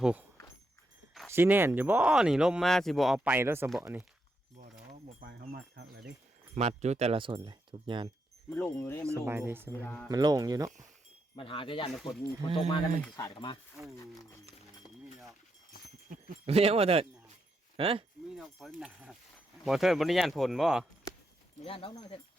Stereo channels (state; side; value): normal; both; correlation 0.81